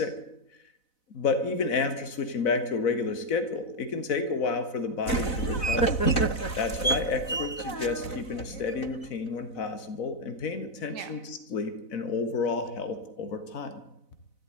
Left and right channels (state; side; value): late; right; 4.0 ms